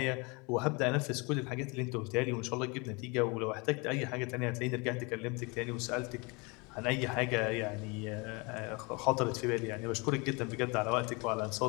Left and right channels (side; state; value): right; quieter; 28.7 dB